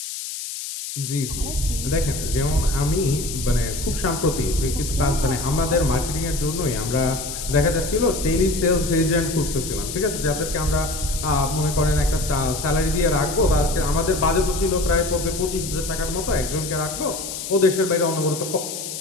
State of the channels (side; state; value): left; noise; hiss, 7 dB below the sound